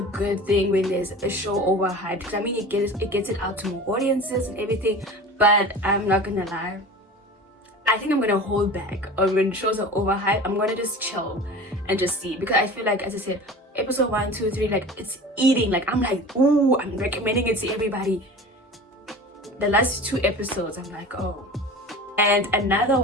good thing when there's a show overhyped, because I mean, it gets it out to more audiences and everything. But I'm not gonna lie, I think I'm gonna hold back on when shows are overhyped. I'm gonna just chill and just see, because I feel like, as I said, episode 1, 2, 3, like it's eating. Like I'm like, ooh, I'm recommending it to everybody. The last 2 episodes, I'm like, oh. And another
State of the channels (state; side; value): normal; both; correlation 0.36